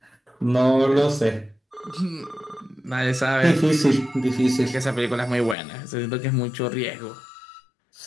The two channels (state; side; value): drops out; right; at 5.6 s